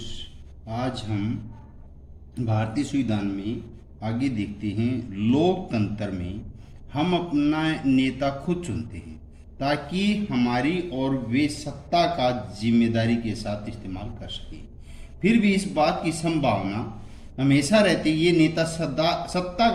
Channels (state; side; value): identical; both; correlation 1.00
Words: आज हम भारतीय संविधान में आगे देखते हैं। लोकतंत्र में हम अपना नेता खुद चुनते हैं ताकि हमारी और वे सत्ता का जिम्मेदारी के साथ इस्तेमाल कर सकें। फिर भी इस बात की संभावना हमेशा रहती है ये नेता सत्ता